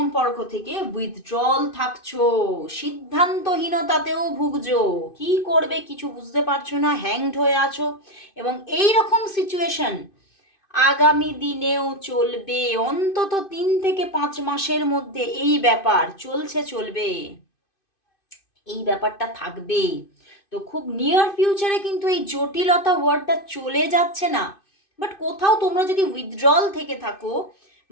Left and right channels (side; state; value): right; late; 2.5 ms